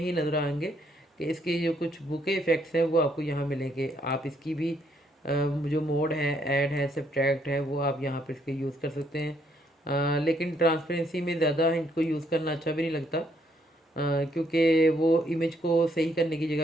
नज़र आएंगे कि इसके जो कुछ बुके इफेक्ट्स हैं वो आपको यहाँ मिलेंगे। आप इसकी भी जो मोड है, ऐड है, सब्ट्रैक्ट है, वो आप यहाँ पर इसके यूज़ कर सकते हैं। लेकिन ट्रांसपेरेंसी में ज़्यादा इनको यूज़ करना अच्छा भी नहीं लगता, क्योंकि वो इमेज को सही करने की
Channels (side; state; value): both; normal; correlation 0.71